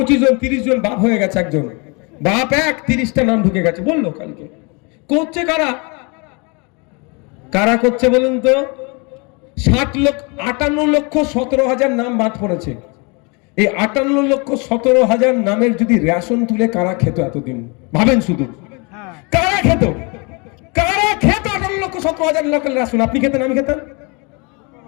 জন 30 জন বাপ হয়ে গেছে। একজন বাপ 30টা নাম ঢুকে গেছে বললো কালকে। করছে কারা? কারা করছে বলুন তো? 58,17,000 নাম বাদ পড়েছে। এই 58,17,000 নামের যদি রেশন তুলে কারা খেত এতদিন? ভাবেন শুধু, কারা খেত? কারা খেত 58,17,000 লোকের রেশন? আপনি খেতেন, আমি খেতাম।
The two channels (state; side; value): quieter; right; 30.8 dB